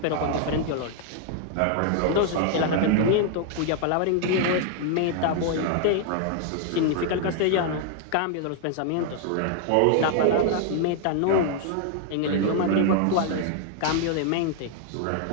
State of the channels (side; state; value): both; different; correlation 0.00